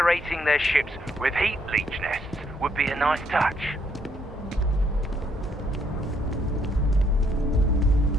their ships with heat leech nests would be a nice touch.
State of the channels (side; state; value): both; normal; correlation 0.71